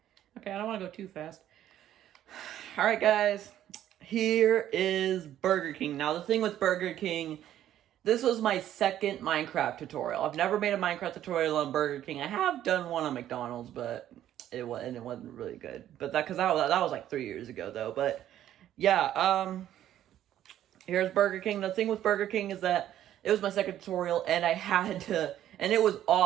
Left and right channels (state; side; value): quieter; left; 11.8 dB